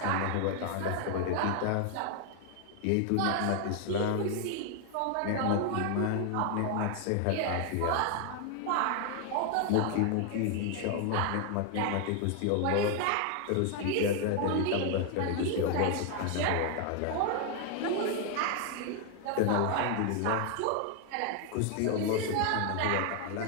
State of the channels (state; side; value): different; both; correlation 0.00